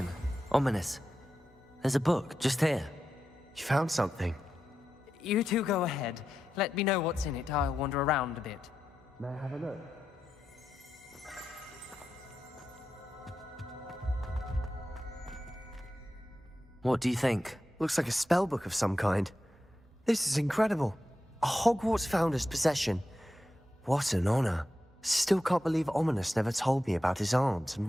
ominous. There's a book just here. You found something? You two go ahead. Let me know what's in it. I'll wander around a bit. May I have a look? What do you think? Looks like a spell book of some kind. This is incredible. A Hogwarts founder's possession. What an honor. Still can't believe Ominous never told me about his aunt and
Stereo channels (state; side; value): normal; both; correlation 0.89